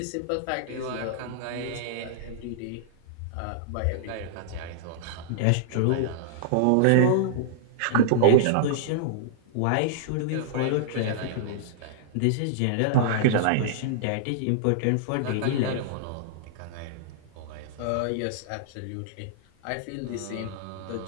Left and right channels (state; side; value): different; both; correlation -0.01